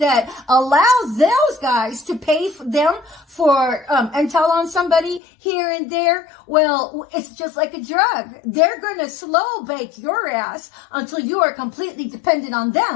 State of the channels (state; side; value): drops out; right; at 5.2 s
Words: allow those guys to pay them for intel on somebody here and there, well, it's just like a drug. They're going to slow bake your ass until you are completely dependent on